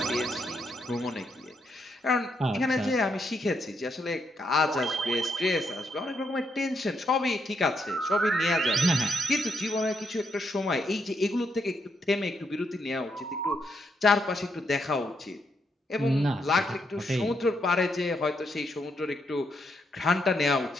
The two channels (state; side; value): normal; both; correlation 0.78